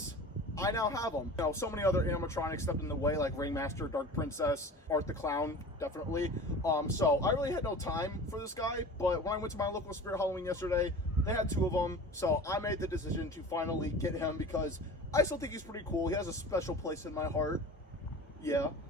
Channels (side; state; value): both; normal; correlation 0.37